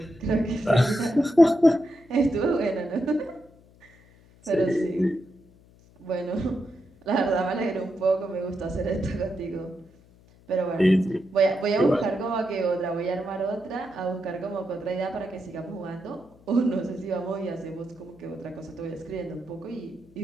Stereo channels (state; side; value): noise; left; hum, 27 dB below the sound